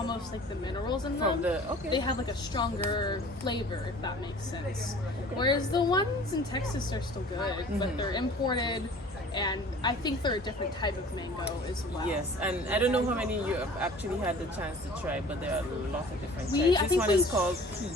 like the minerals in them. They have like a stronger flavor, if that makes sense. Whereas the ones in Texas are still good, but they're imported. And I think they're a different type of mango as well. Yes, and I don't know how many you have actually had the chance to try, but there are a lot of different types. I This think one is called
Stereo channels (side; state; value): both; normal; correlation 0.46